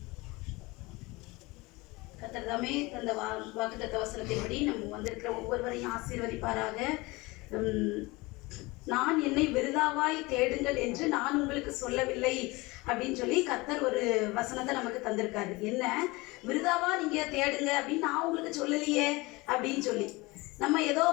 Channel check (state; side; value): quieter; right; 23.2 dB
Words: கர்த்தர்தாமே அந்த வாக்குத்தத்த வசனத்தின்படி நம்ம வந்திருக்கிற ஒவ்வொருவரையும் ஆசீர்வதிப்பாராக. நான் என்னை விருதாவாய் தேடுங்கள் என்று நான் உங்களுக்கு சொல்லவில்லை அப்படின்னு சொல்லி கர்த்தர் ஒரு வசனத்தை நமக்கு தந்திருக்காரு. என்ன விருதாவா நீங்க தேடுங்க அப்படின்னு நான் உங்களுக்கு சொல்லலையே அப்படின்னு சொல்லி நம்ம ஏதோ